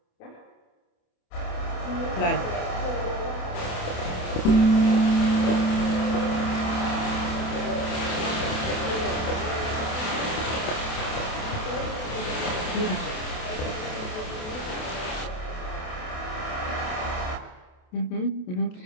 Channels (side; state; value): right; late; 28 ms